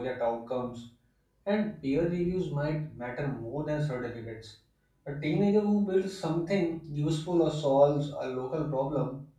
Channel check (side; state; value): both; identical; correlation 1.00